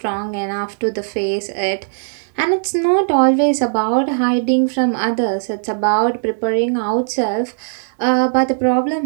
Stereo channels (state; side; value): silent; left; digital silence